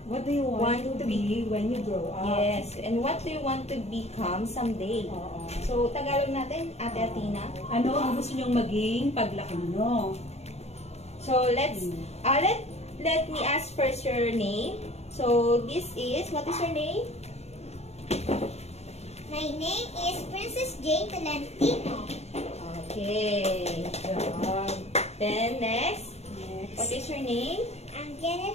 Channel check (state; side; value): late; right; 0.31 ms